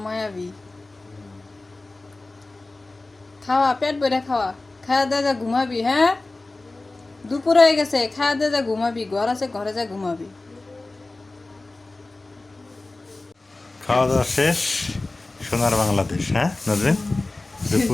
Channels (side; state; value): right; quieter; 3.1 dB